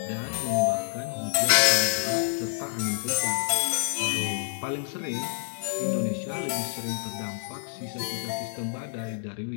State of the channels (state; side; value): silent; right; digital silence